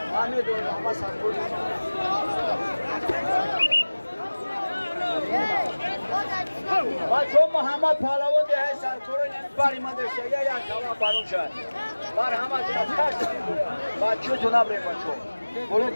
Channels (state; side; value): inverted; both; correlation -1.00